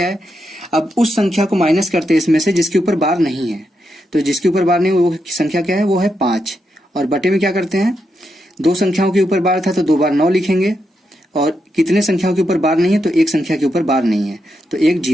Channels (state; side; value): normal; both; correlation 0.84